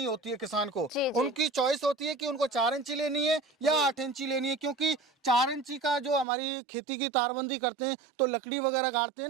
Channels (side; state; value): left; drops out; at 6.2 s